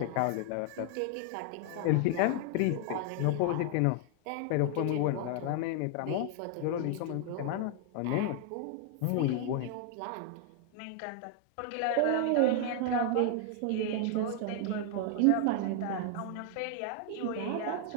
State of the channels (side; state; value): both; different; correlation 0.00